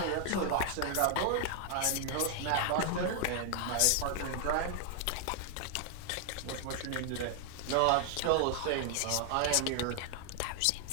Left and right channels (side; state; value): both; different; correlation 0.00